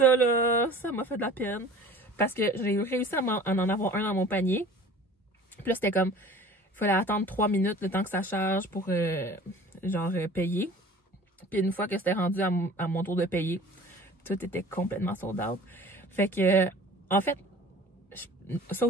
là, ça m'a fait de la peine. Parce que j'ai réussi à en avoir un dans mon panier. Puis là, c'était comme... Il fallait attendre 3 minutes le temps que ça charge pour, payer. Puis une fois que c'était rendu à mon tour de payer, tout était complètement sold out. Fait que, en fait, ça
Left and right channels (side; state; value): both; normal; correlation 0.44